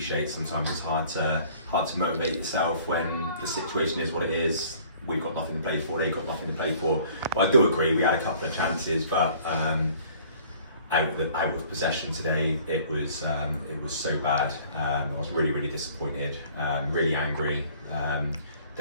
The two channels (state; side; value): inverted; both; correlation -0.53